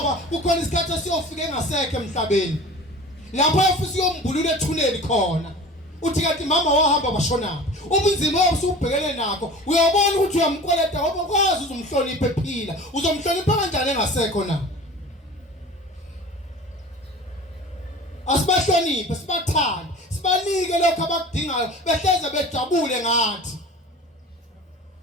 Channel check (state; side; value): normal; both; correlation 0.39